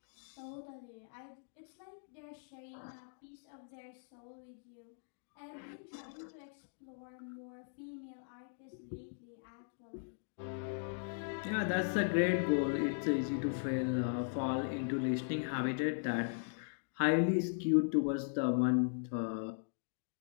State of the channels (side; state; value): right; silent; digital silence